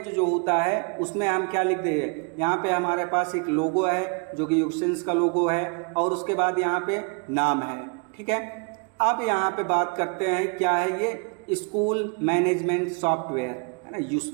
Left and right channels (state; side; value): quieter; left; 35.4 dB